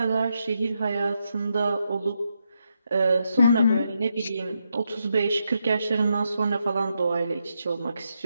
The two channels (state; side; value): inverted; both; correlation -0.82